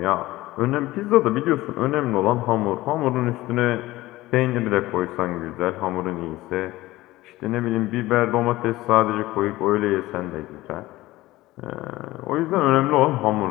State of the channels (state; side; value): quieter; right; 17.9 dB